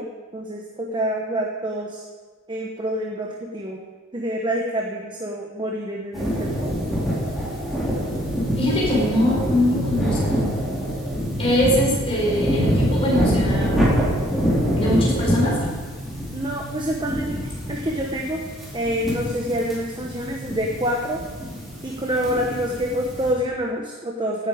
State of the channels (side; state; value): both; normal; correlation 0.61